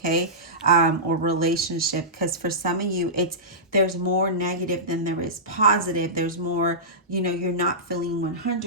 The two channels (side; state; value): both; normal; correlation -0.17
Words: or relationship. Because for some of you, there's more negative than there is positive. There's more, you're not feeling